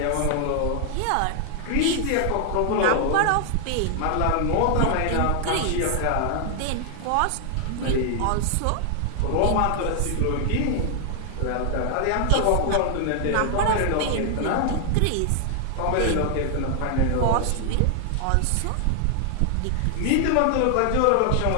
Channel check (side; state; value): both; different; correlation 0.00